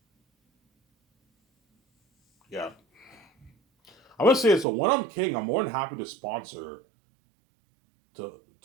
Yeah, I'm gonna say it. So when I'm king, I'm more than happy to sponsor to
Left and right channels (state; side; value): drops out; left; at 4.7 s